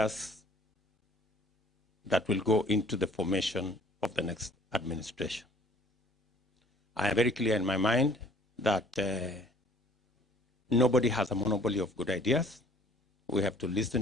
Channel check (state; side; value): normal; both; correlation 0.55